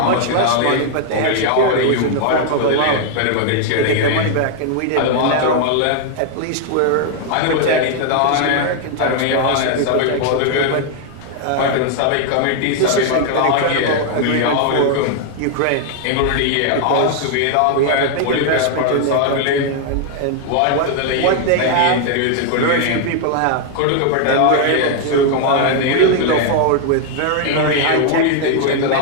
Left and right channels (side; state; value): both; different; correlation 0.00